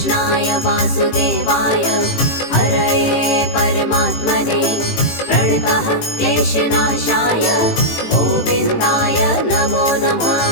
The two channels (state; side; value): late; right; 18 ms